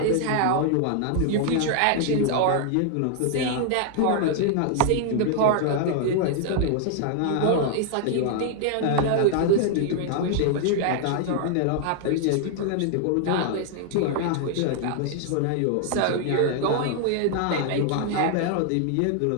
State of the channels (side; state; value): both; different; correlation 0.00